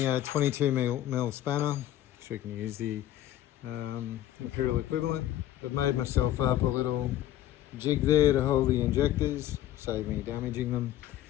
a 22mm spanner, so you can use the imperial equivalent. I've made myself up a little jig there to hold the injectors, save me damaging them.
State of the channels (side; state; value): right; quieter; 13.2 dB